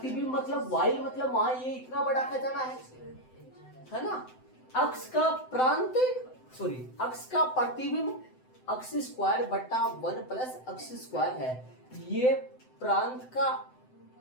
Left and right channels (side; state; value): right; late; 7.8 ms